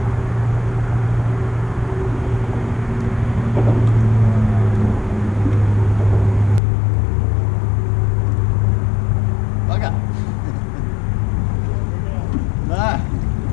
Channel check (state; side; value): drops out; right; at 6.6 s